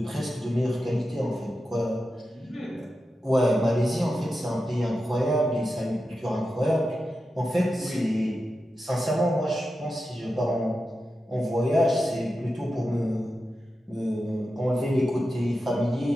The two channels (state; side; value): normal; both; correlation 0.90